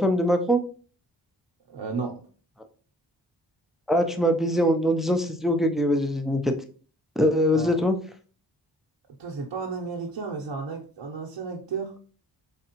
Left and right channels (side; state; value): both; normal; correlation 0.58